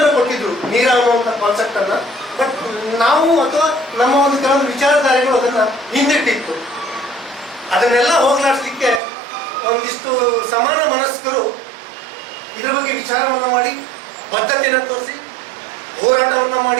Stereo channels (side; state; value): left; drops out; at 9.0 s